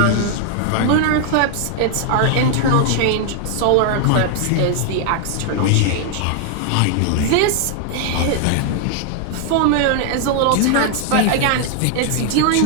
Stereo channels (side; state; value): both; different; correlation 0.00